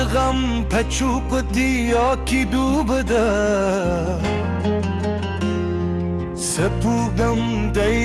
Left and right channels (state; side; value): identical; both; correlation 1.00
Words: پچوقتیا کی دوبده سپوگم